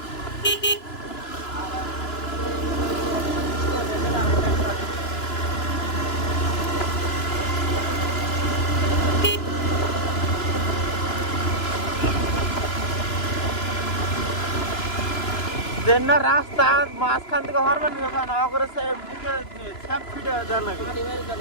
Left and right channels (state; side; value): late; right; 2.9 ms